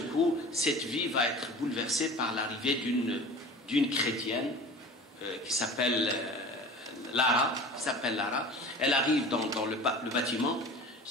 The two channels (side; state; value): both; normal; correlation 0.39